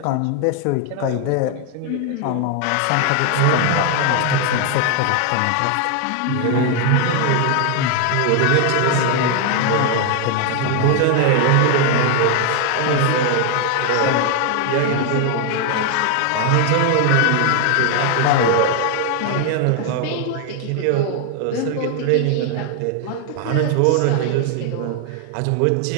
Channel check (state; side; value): different; both; correlation 0.00